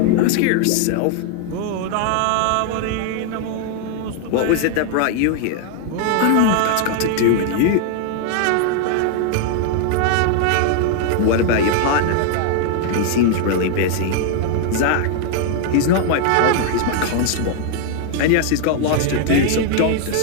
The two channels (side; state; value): both; different; correlation 0.00